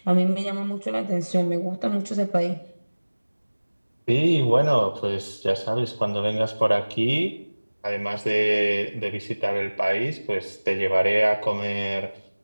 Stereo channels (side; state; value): both; inverted; correlation -1.00